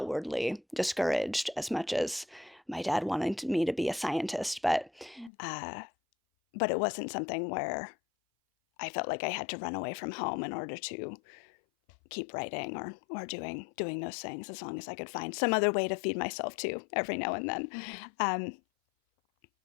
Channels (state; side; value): drops out; right; at 5.3 s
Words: discouraged as much as my dad wanted me to be a scientist, but it wasn't something where I felt like I had to run away from home in order to keep writing or doing those things, as long as I could find some other way to feed myself too every now and then. Mm-hmm.